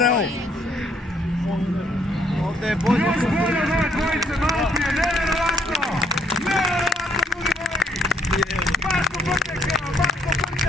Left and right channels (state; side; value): normal; both; correlation 0.68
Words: ovo. Ovdje je bolje. Još bolje od ove dvojice malo prije. Nevjerovatno! Nevjerovatno, ljudi moji! Marko